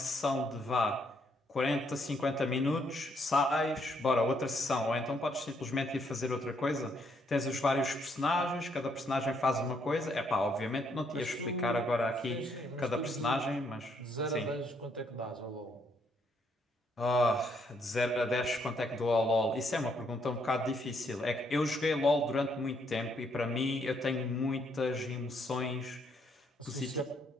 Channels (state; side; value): normal; both; correlation 0.72